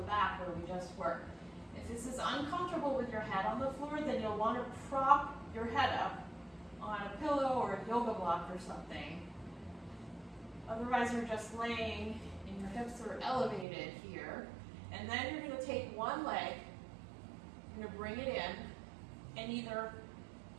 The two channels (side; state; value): left; drops out; at 13.7 s